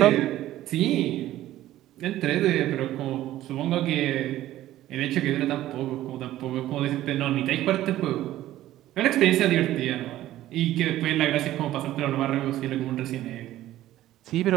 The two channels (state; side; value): quieter; left; 14.3 dB